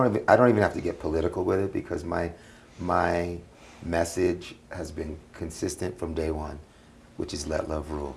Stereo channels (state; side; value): identical; both; correlation 1.00